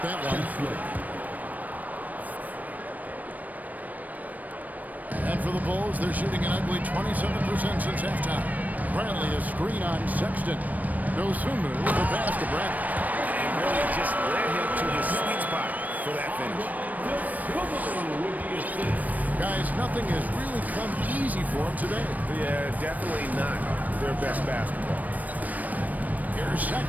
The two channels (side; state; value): left; late; 0.078 ms